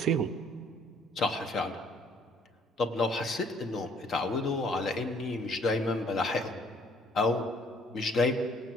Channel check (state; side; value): normal; both; correlation 0.60